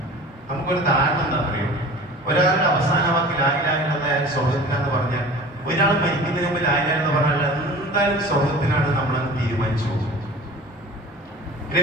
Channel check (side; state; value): both; normal; correlation 0.41